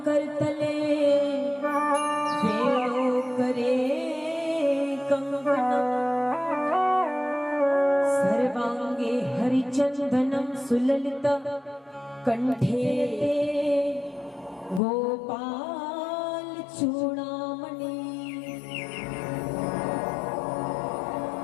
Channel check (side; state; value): right; drops out; at 14.8 s